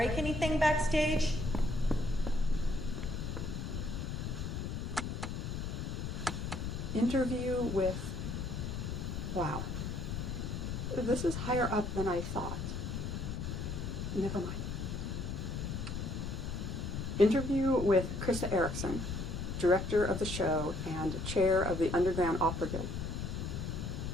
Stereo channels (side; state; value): left; noise; rumble, 4 dB below the sound